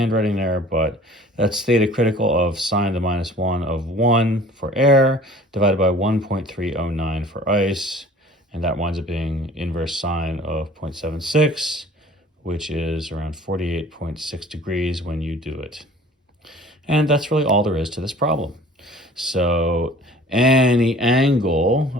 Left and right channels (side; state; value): both; normal; correlation 0.48